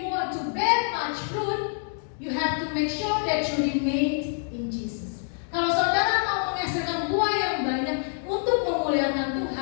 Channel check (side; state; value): right; silent; 58 dB below the other